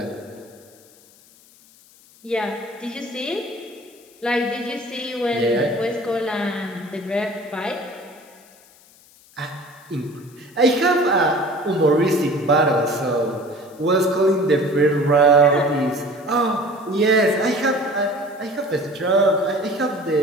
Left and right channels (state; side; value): noise; left; hiss, 27 dB below the sound